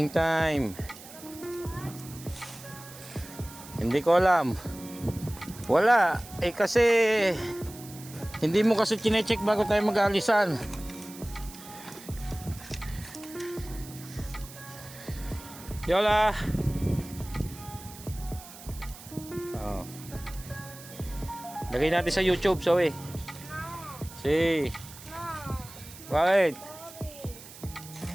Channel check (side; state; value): right; noise; hiss, 17 dB below the sound